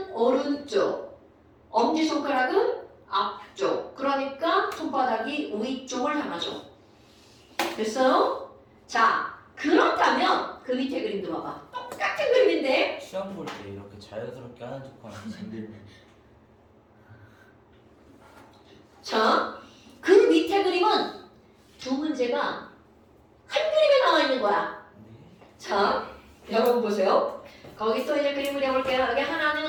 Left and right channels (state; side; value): identical; both; correlation 1.00